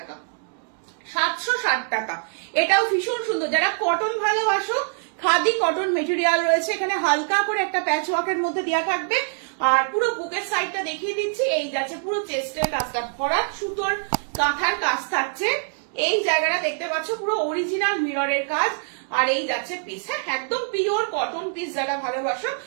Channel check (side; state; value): left; silent; digital silence